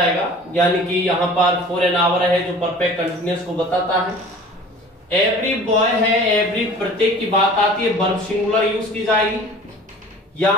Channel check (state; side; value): normal; both; correlation 0.44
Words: यानी कि यहां पर फॉर एन आवर है जो परफेक्ट कंटिन्यूअस को बताता है। एवरी बॉय है, एवरी प्रत्येक की बात आती है, वर्ब सिंगुलर यूज की जाएगी।